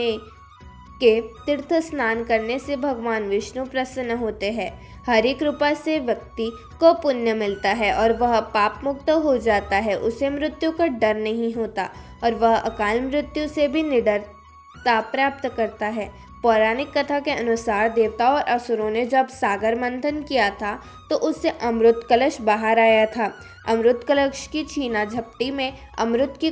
के तीर्थ स्नान करने से भगवान विष्णु प्रसन्न होते हैं। हरि कृपा से व्यक्ति को पुण्य मिलता है और वह पाप मुक्त हो जाता है। उसे मृत्यु का डर नहीं होता और वह अकाल मृत्यु से भी निडरता प्राप्त करता है। पौराणिक कथा के अनुसार देवताओं और असुरों ने जब सागर मंथन किया था तो उससे अमृत कलश बाहर आया था। अमृत कलश की छीना झपटी में अमृत की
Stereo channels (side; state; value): both; identical; correlation 1.00